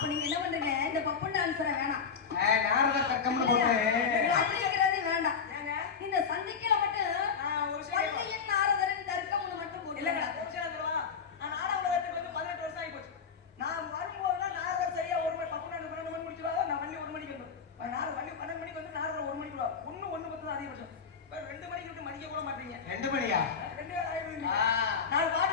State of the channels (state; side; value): quieter; right; 6.1 dB